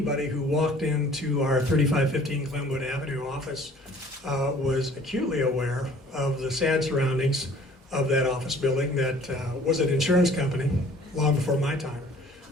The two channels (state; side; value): normal; both; correlation 0.52